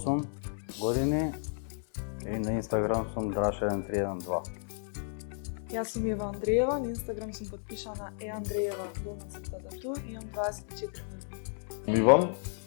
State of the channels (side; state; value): right; silent; digital silence